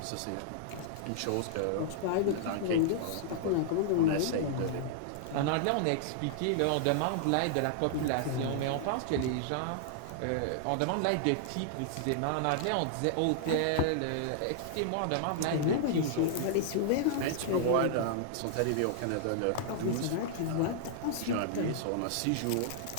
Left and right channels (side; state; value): both; different; correlation -0.01